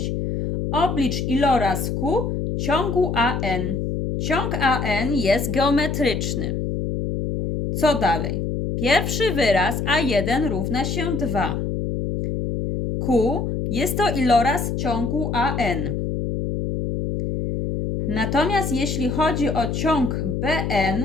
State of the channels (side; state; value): left; noise; hum, 2 dB below the sound